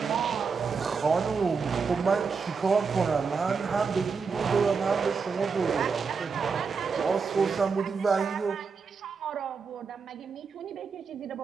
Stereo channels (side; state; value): left; quieter; 5.3 dB